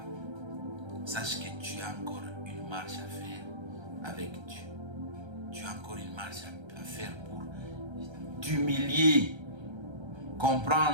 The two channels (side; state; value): left; late; 1.3 ms